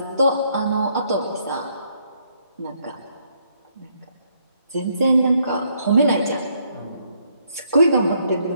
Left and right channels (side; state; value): both; inverted; correlation -0.71